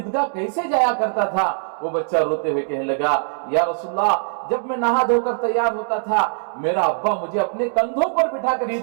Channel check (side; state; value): left; silent; digital silence